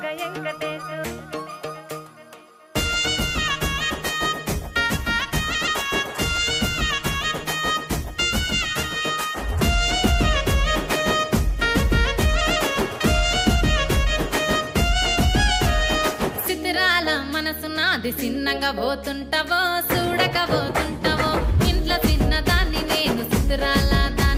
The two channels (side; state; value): both; identical; correlation 1.00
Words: వెంకటేశు సిద్ధిరాల మనసు నాది చిన్నగా పోతుంటావో చూడక పోతుంటావో ఇంట్లో చిన్నదాన్ని నేను సిద్ధిరాల